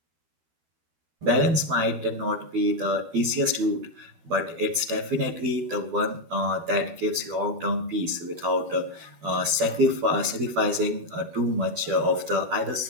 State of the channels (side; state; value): left; late; 13 ms